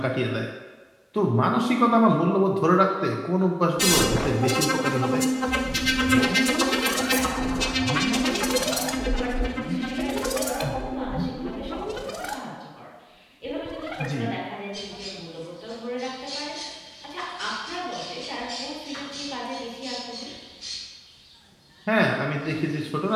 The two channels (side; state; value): both; identical; correlation 1.00